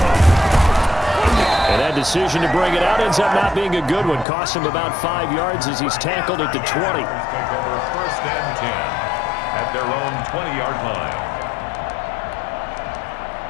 And that decision to bring it out ends up not being a good one. Cost him about 5 yards as he's tackled at the 20. Take over 1st and 10 at their own 20-yard line.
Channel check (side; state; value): right; drops out; at 4.2 s